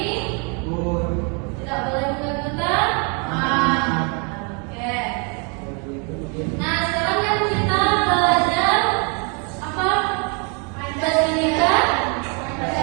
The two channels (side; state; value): left; quieter; 34.0 dB